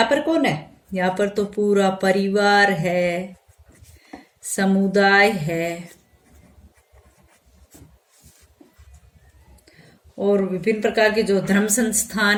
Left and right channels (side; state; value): both; identical; correlation 1.00